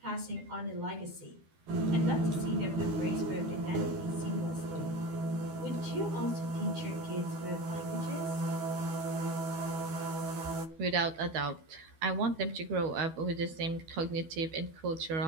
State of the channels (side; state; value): left; late; 12 ms